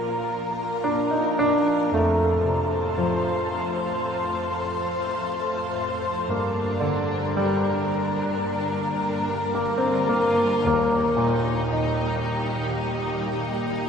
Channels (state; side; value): normal; both; correlation 0.62